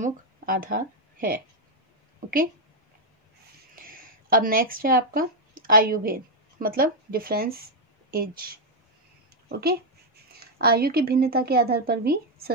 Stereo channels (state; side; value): normal; both; correlation 0.00